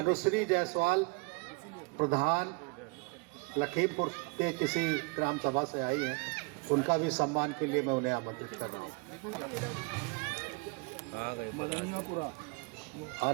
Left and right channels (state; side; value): quieter; left; 31.0 dB